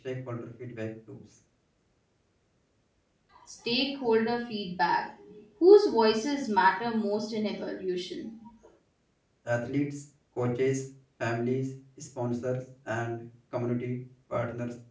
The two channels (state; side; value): identical; both; correlation 1.00